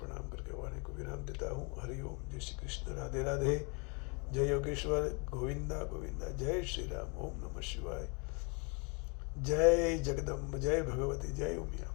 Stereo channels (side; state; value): right; quieter; 33.6 dB